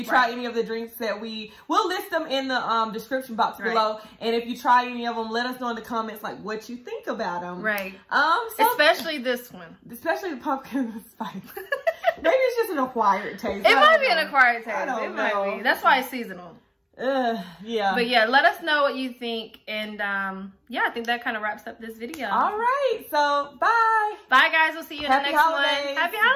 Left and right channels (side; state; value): both; identical; correlation 1.00